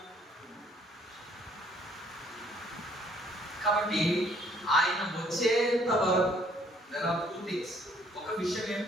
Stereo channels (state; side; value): normal; both; correlation 0.62